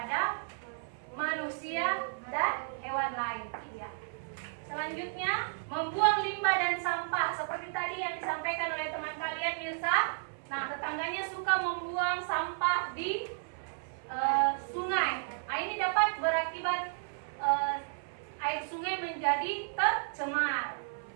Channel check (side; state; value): left; silent; 56 dB below the other